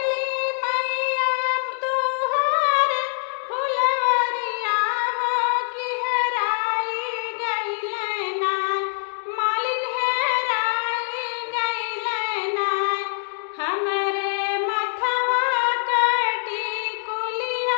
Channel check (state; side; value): silent; right; digital silence